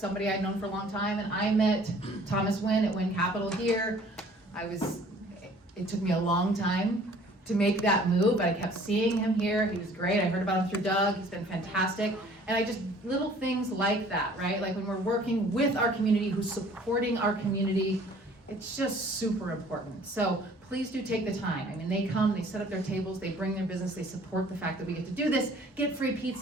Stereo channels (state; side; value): normal; both; correlation 0.53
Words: I'd known for a long time, and I met Thomas Wynn at Wynn Capital here. It took me a long time to make that move, but I kept seeing him here. He was great. I heard about him through Doug. He's been fantastic. And little things like that, right? Like when we're working with our community, who's supporting our community, it's just super important. So please do take the time. I mean, they come, they set up their tables, they bring their business, they support the fact that we get to do this, get free